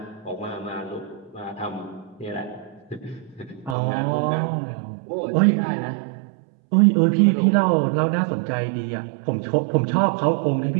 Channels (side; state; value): left; drops out; at 3.8 s